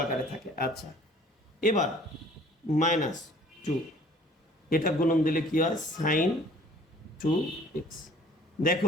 আকারে থাকে। আচ্ছা, এবার -2, এটা গুণন দিলে কি হয়, সাইন 2x।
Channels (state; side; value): normal; both; correlation 0.52